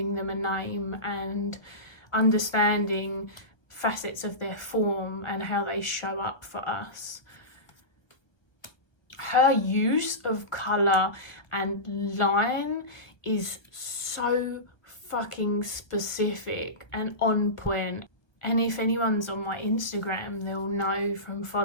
them a name and understanding facets of their form and how they show up for us. Her use of colour and line is so fucking specific and on point. And if anyone's on my Instagram, they'll know from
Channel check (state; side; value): late; right; 1.0 ms